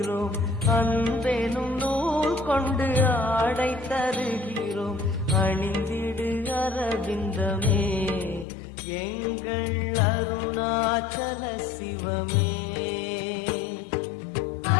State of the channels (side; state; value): right; drops out; at 8.5 s